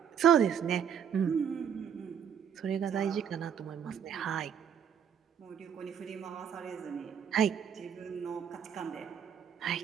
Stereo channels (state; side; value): quieter; left; 8.1 dB